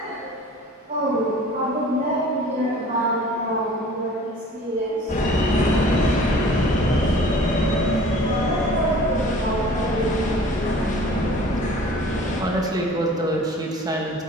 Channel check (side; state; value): both; normal; correlation 0.47